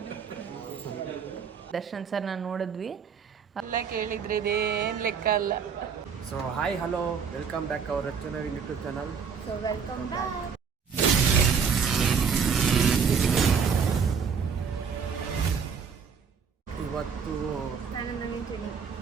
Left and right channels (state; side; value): quieter; left; 6.3 dB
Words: ದರ್ಶನ್ ಸರ್ ನಾನು ನೋಡಿದ್ವಿ ಎಲ್ಲ ಕೇಳಿದ್ರೆ ಇದೇನು ಲೆಕ್ಕ ಅಲ್ಲ. So hi hello welcome back hour ರಚನಾ YouTube channel. So welcome back. ಇವತ್ತು